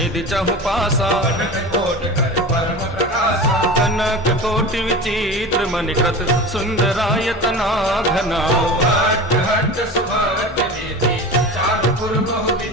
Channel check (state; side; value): normal; both; correlation 0.31